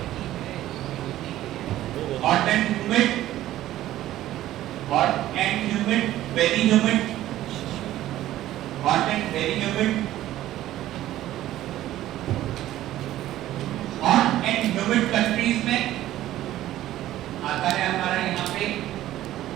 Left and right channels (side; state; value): left; quieter; 14.1 dB